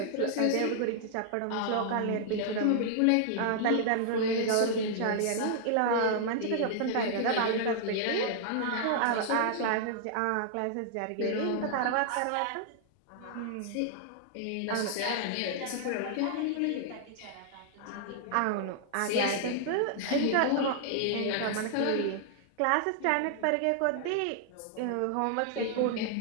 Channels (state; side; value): different; both; correlation -0.01